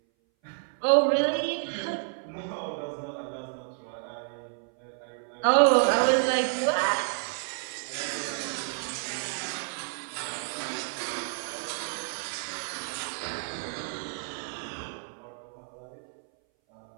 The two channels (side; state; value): left; silent; 58 dB below the other